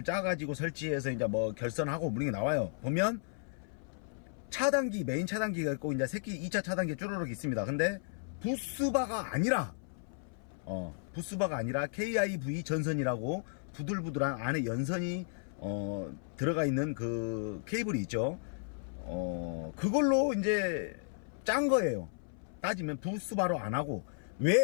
짜가지고 설치해서 이제 뭐 결선하고 무는 게 나와요. 보면 차단기 메인 차단기가 있고 이제 새끼 2차 차단기 쭈르륵 있습니다. 근데 부스바가 아니라 KIV 전선이라고 부들부들한 안에 연선이 들어가 있는 그 케이블이 있죠. 그걸로 이제 짠 거예요. 따지면 부스바로 안 하고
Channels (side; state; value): right; silent; 55 dB below the other